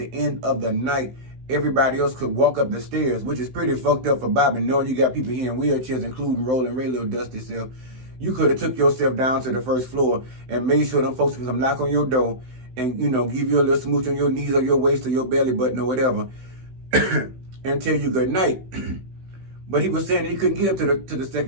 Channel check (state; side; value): late; left; 16 ms